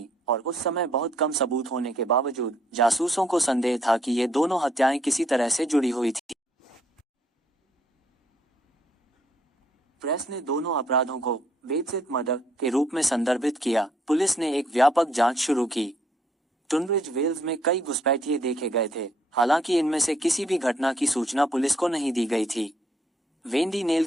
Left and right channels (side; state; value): both; normal; correlation 0.69